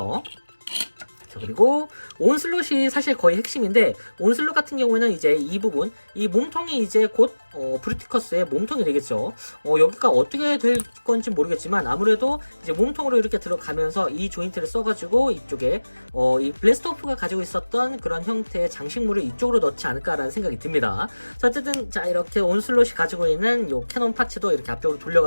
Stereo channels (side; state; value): both; inverted; correlation -1.00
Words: 자, 그리고 온슬롯이 사실 거의 핵심인데, 온슬롯 같은 경우에는 이제 이 부분, 이 몸통이 이제 곧 브루티커스의 몸통이 되겠죠. 여기가 어떻게 될 건지 모르겠지만 아무래도 이제 몸통으로 이렇게 들어가면서 이 조인트를 써가지고 이쪽에 이 블래스트오프가 가지고 있었던 그런 형태의 장식물을 이쪽으로 넣지 않을까라는 생각이 듭니다. 자, 어쨌든 자 이렇게 온슬롯이 가지고 있는 요 캐논 파츠도 이렇게 앞쪽으로